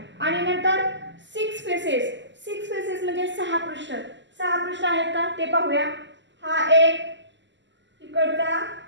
आणि नंतर 6 फेसेस म्हणजे 6 पृष्ठ. 6 पृष्ठ आहेत का ते पाहूया. हा 1, इकडचा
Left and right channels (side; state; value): left; late; 0.53 ms